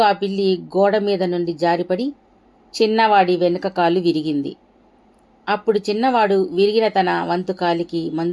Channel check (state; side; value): identical; both; correlation 1.00